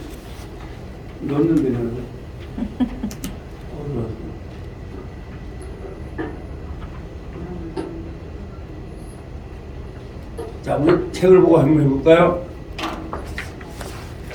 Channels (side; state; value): both; identical; correlation 1.00